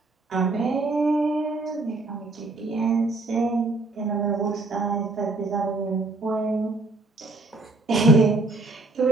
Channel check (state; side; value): quieter; left; 3.2 dB